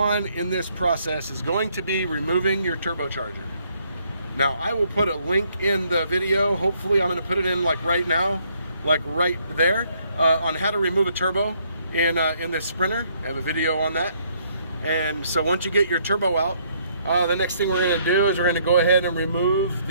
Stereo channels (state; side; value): inverted; both; correlation -0.68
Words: in this process is going to be removing your turbocharger. Now I will put a link in the video. Hopefully I'm going to put it in like right now, like right there, on how to remove a turbo in this Sprinter. I have a video on that. And so once you get your turbo out, the next thing we're going to do is we're going to go ahead and remove